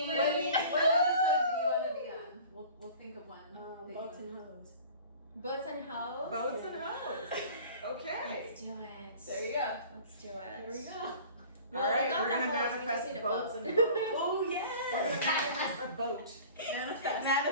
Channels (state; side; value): inverted; both; correlation -0.43